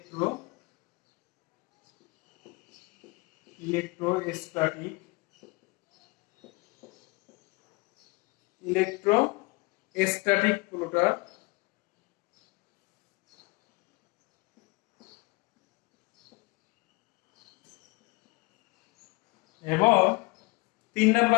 Electrostatic plotter. এবং 3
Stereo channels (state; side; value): quieter; right; 26.5 dB